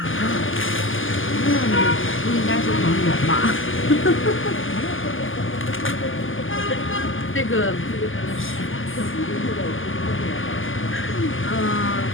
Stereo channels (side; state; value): right; late; 0.58 ms